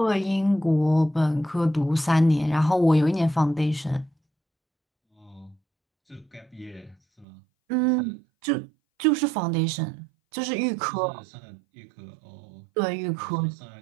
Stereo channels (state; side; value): drops out; left; at 7.2 s